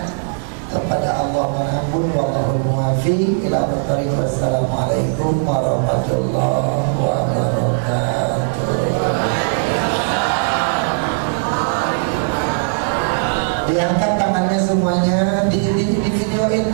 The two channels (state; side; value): silent; left; digital silence